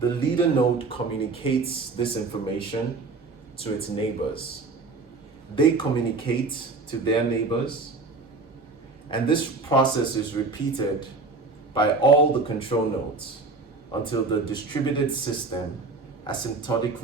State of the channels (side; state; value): left; quieter; 3.8 dB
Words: leader node communicates this information to its neighbors. They communicate to their neighbors, and this process is repeated by all the control nodes until the distributed system